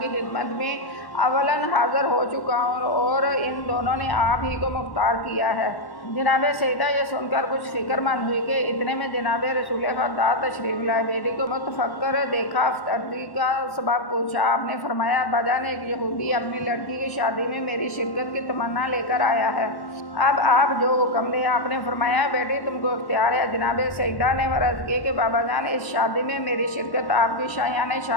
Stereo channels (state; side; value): late; right; 1.1 ms